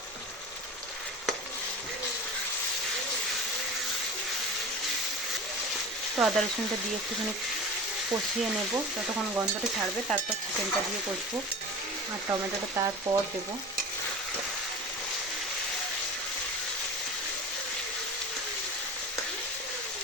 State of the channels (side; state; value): both; normal; correlation 0.33